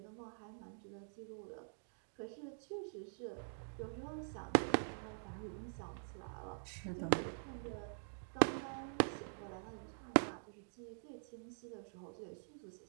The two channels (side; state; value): left; silent; digital silence